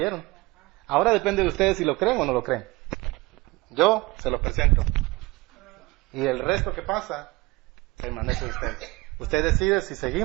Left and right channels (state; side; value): quieter; left; 22.5 dB